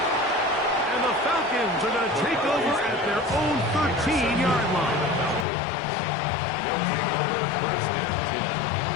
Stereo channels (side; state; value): right; drops out; at 5.5 s